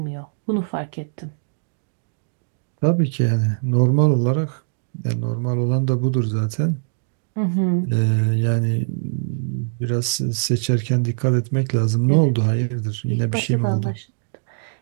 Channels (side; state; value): left; silent; digital silence